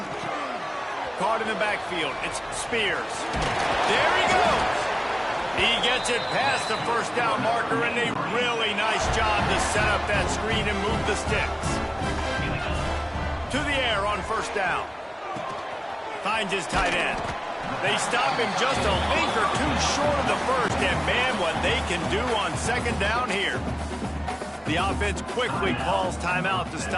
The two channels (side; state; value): both; identical; correlation 1.00